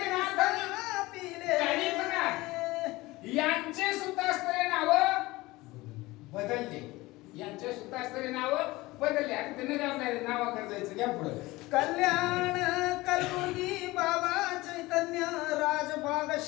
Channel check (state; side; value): quieter; right; 20.2 dB